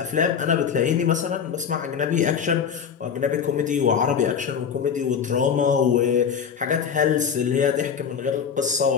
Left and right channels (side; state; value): right; quieter; 7.2 dB